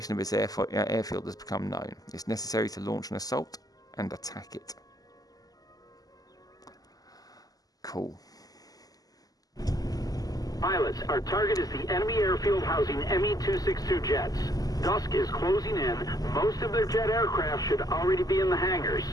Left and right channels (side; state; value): right; late; 0.18 ms